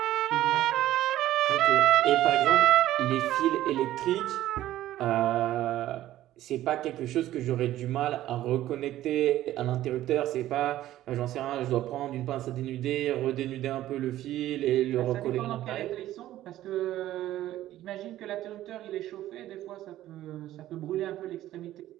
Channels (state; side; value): quieter; left; 13.9 dB